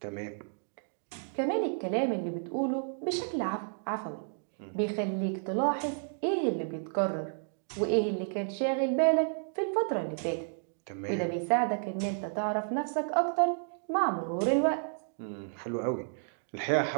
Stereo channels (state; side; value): silent; left; digital silence